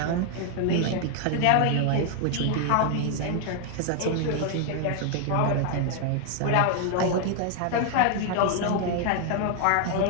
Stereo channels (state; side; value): different; both; correlation 0.00